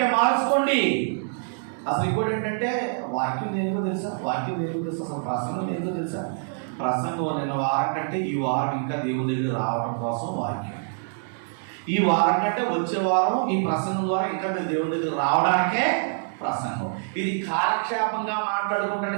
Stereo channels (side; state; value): left; silent; digital silence